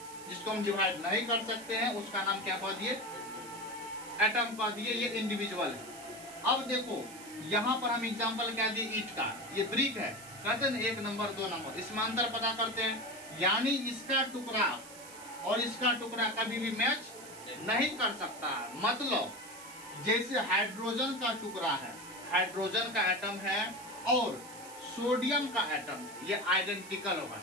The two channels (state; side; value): noise; right; hiss, 16 dB below the sound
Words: जिसको हम डिवाइड नहीं कर सकते हैं उसका नाम क्या कह दिए, एटम कह दिए। ये इंडिविजुअल है। अब देखो यहाँ पर हम एग्जाम्पल क्या दिए, ईट का, ये ब्रिक है, कहते हैं 1 नंबर 2 नंबर, इसमें अंतर पता करते हैं। यानी इसका टुकड़ा और इसका टुकड़ा कभी भी मैच नहीं कर सकता। मतलब जैसे हाइड्रोजन का टुकड़ा है, हाइड्रोजन का एटम है और सोडियम का एटम, ये आइडेंटिकल होगा।